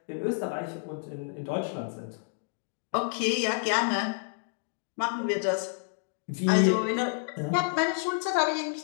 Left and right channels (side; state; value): right; silent; 58 dB below the other